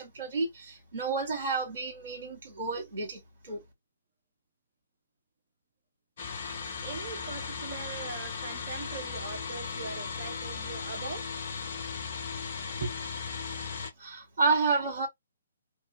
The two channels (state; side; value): inverted; both; correlation -0.57